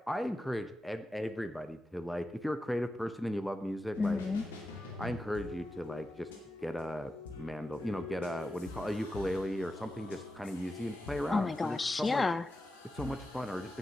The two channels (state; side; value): normal; both; correlation 0.90